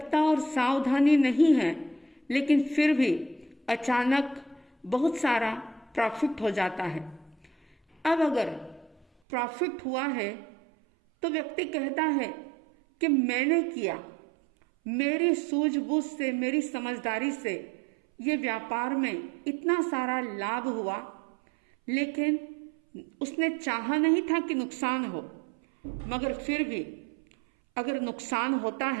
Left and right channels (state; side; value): drops out; left; at 9.1 s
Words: और सावधानी नहीं है, लेकिन फिर भी अचानक बहुत सारा प्रॉफिट हो जाता है। अब अगर प्रॉफिट हुआ है तो व्यक्ति कहता है कि मैंने किया, मेरी सूझबूझ से, मेरी समझदारी से ये व्यापार में इतना सारा लाभ हुआ, लेकिन उसने चाहा नहीं था कि नुकसान हो, मगर फिर भी अगर नुकसान होता